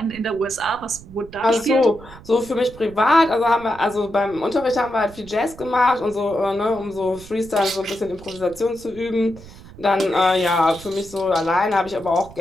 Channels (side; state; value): right; noise; rumble, 19 dB below the sound